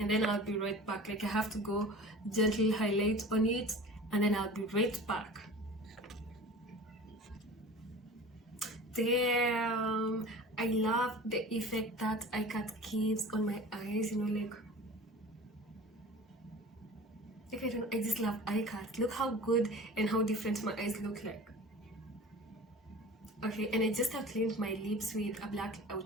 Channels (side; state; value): both; normal; correlation 0.39